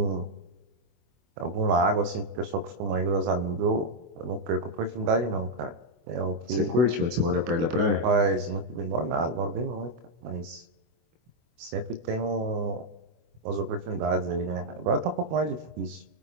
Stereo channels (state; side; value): late; left; 24 ms